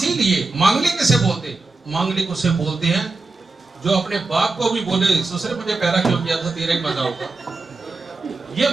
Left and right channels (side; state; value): left; quieter; 3.5 dB